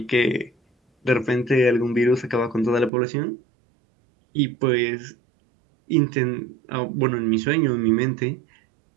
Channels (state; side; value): drops out; left; at 2.9 s